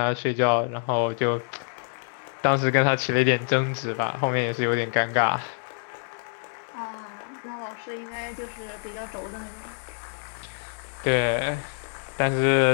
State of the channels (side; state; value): right; silent; digital silence